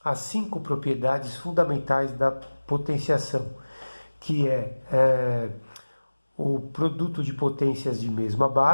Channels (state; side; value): inverted; both; correlation -1.00